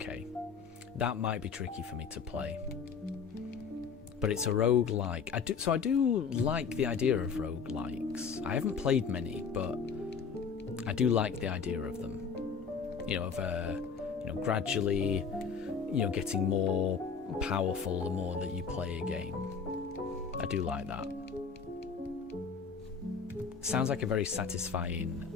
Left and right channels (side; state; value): right; quieter; 6.0 dB